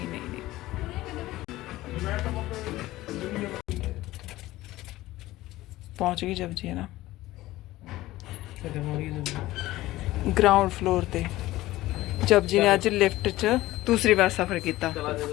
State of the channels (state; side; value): quieter; right; 17.0 dB